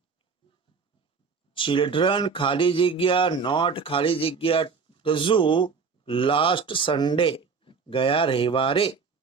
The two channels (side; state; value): left; quieter; 5.2 dB